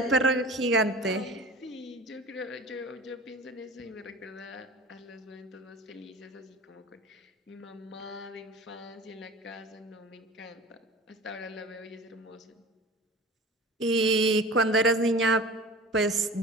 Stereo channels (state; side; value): normal; both; correlation 0.39